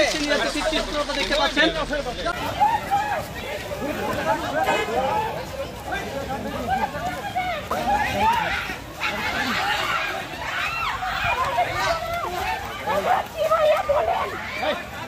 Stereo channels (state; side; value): identical; both; correlation 1.00